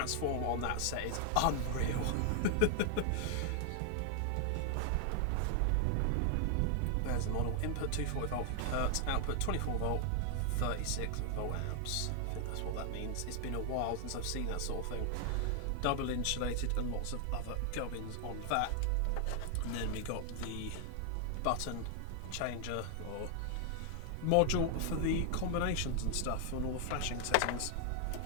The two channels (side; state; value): both; different; correlation 0.00